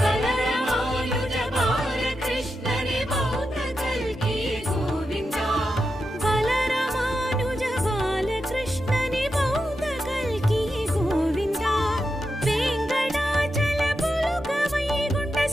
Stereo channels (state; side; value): normal; both; correlation 0.88